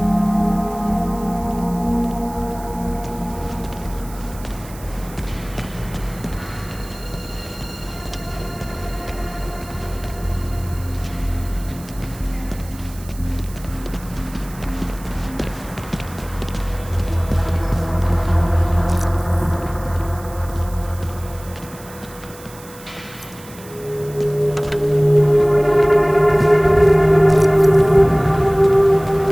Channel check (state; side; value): noise; right; hiss, 19 dB below the sound